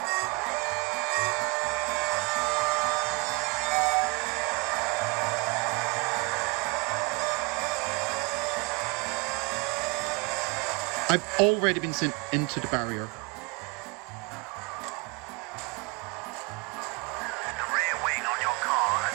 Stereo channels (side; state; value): left; quieter; 29.4 dB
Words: I've already been sent into the barrier. The rear wing on your car has